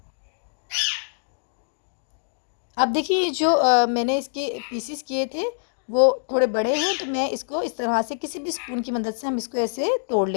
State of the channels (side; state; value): right; silent; digital silence